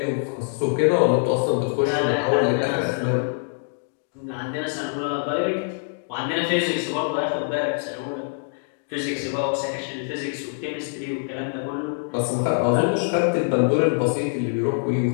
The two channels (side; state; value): right; silent; digital silence